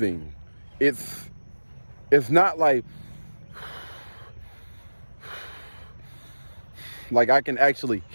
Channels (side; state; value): both; inverted; correlation -1.00